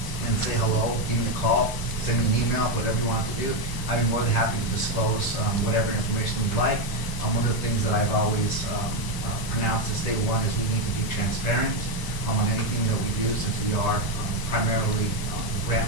and say hello, give me a call, send me an email, whatever you want to do. I'd be more than happy to disclose whatever information you'd like. One of the things that I've always pronounced as state one is we need to be transparent on anything that we do, since we are primarily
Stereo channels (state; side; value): late; right; 1.0 ms